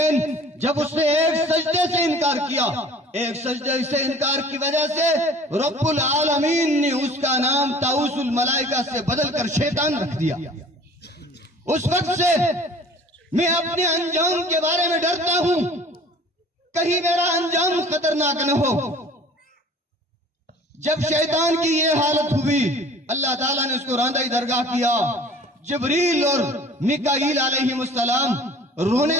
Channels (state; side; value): normal; both; correlation 0.47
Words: جب اس نے ایک سجدے سے انکار کیا، ایک سجدے سے انکار کی وجہ سے رب العالمین نے اس کا نام طاؤس الملائکہ سے بدل کر شیطان رکھ دیا۔ اس وقت سے میں اپنے انجام کے بارے میں ڈرتا ہوں، کہیں میرا انجام خطرناک نہ ہو۔ جب شیطان کی یہ حالت ہوئی، اللہ تعالیٰ نے اس کو راندہ درگاہ کیا۔ جبریل اور میکائیل علیہ السلام رونے